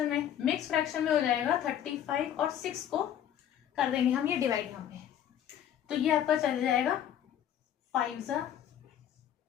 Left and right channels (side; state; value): right; quieter; 10.2 dB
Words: में, मिक्स फ्रैक्शन में हो जाएगा 35 और 6 को कर देंगे हम ये डिवाइड यहाँ पे, तो ये आपका चल जाएगा 5 ×